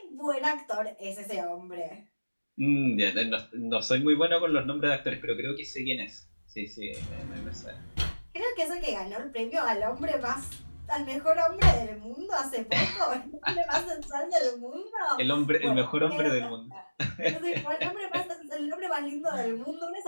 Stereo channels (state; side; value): inverted; both; correlation -1.00